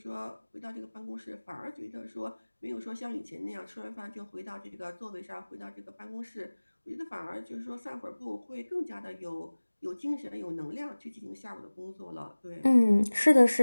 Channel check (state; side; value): inverted; both; correlation -1.00